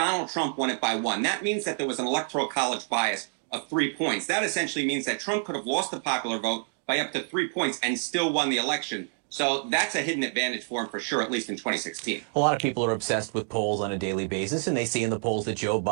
Trump won it by one. That means that there was an Electoral College bias of 3 points. That essentially means that Trump could have lost the popular vote by up to 3 points and still won the election. So that's a hidden advantage for him for sure, at least in 2016. A lot of people are obsessed with polls on a daily basis, and they see in the polls that Joe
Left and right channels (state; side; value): silent; left; 60 dB below the other